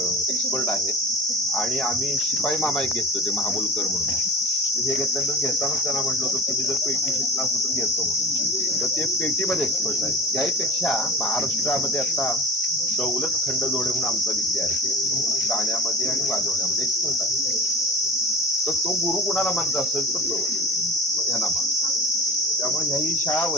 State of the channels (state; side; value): normal; both; correlation 0.38